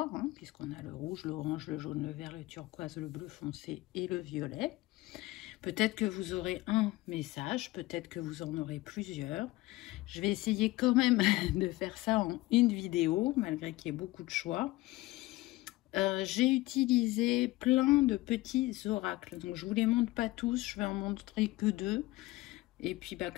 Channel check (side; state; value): right; quieter; 19.2 dB